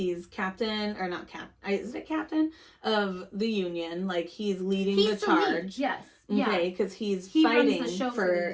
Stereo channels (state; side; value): identical; both; correlation 1.00